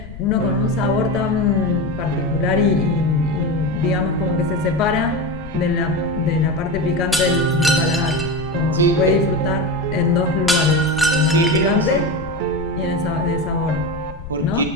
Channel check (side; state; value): left; noise; rumble, 13 dB below the sound